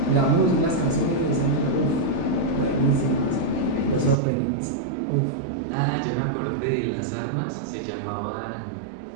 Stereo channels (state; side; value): drops out; left; at 4.2 s